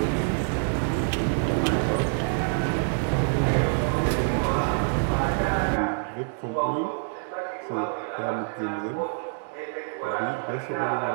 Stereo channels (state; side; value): silent; left; 61 dB below the other